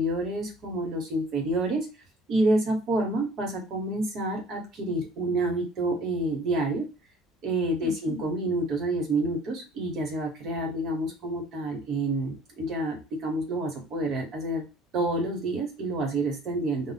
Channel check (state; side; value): normal; both; correlation 0.51